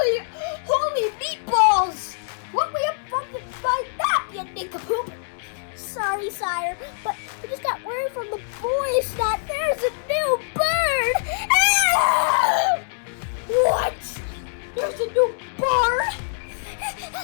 holy meatballs! What were you fucking by nap, you nincompoop? Sorry, sire, but I just got word from the boys that there's a new bird! Ah! What? There's a new bird?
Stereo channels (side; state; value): right; silent; 63 dB below the other